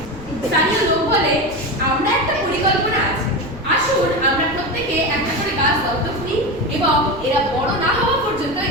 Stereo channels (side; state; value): left; noise; rumble, 17 dB below the sound